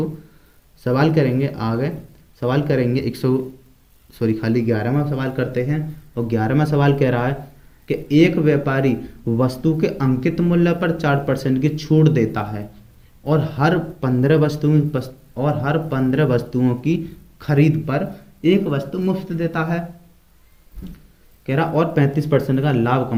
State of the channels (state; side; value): identical; both; correlation 1.00